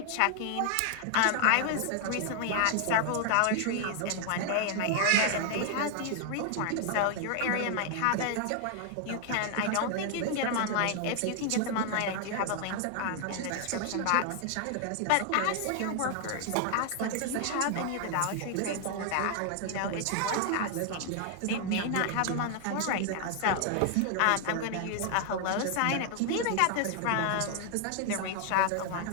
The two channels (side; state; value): both; different; correlation 0.00